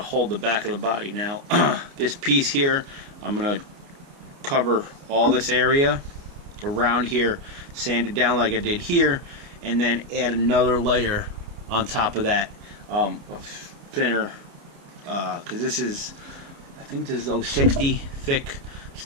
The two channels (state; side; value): late; left; 29 ms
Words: hold the back of the body. Now this piece here, I'm going to cover all this area around here, sand it down like I did here, and then add another layer on top of that of thinner, because this is, I think this is 060 thick